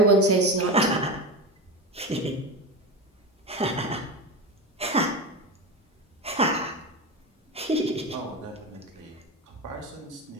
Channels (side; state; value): both; normal; correlation 0.22